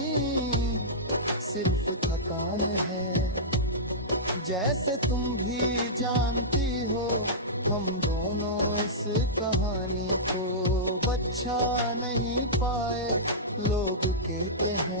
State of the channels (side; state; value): both; normal; correlation -0.14